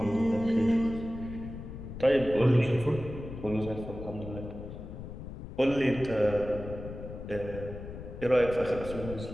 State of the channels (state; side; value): noise; left; rumble, 10 dB below the sound